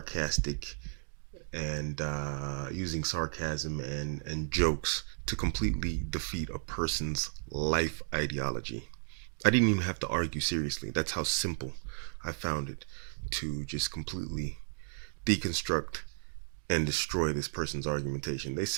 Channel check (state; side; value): silent; left; digital silence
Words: and using sarcasm and jokes to completely defeat a person's life ideology. I didn't even have to argue seriously. That's how simple I found it to just completely deconstruct and destroy this person's argumentation. They